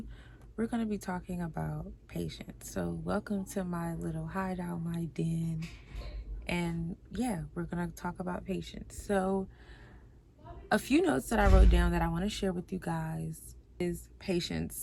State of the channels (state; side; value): identical; both; correlation 1.00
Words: We're going to be talking about patience. So welcome to my little hideout, my den. And yeah, we're going to talk about patience. So a few notes that I wrote down that I want to share with you guys is patience.